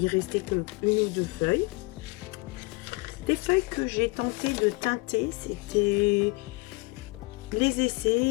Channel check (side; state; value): right; quieter; 26.1 dB